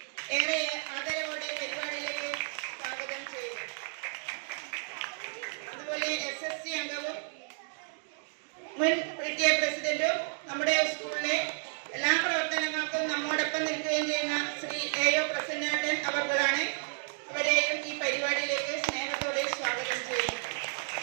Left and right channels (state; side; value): silent; left; 57 dB below the other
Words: ഏറെ ആദരവോടെ പരിപാടിയിലേക്ക് സ്വാഗതം ചെയ്തു. അതുപോലെ SSC അംഗവും മുൻ PTA പ്രസിഡന്റും നമ്മുടെ സ്കൂളിലെ എല്ലാ പ്രവർത്തനങ്ങൾക്കും നമ്മോടൊപ്പം നിൽക്കുകയും ചെയ്യുന്ന ശ്രീ AO പ്രസന്നേട്ടൻ അവർക്കാണ്. അവരെയും ഈ പരിപാടിയിലേക്ക് സ്നേഹത്തോടെ സ്വാഗതം ചെയ്യുന്നു.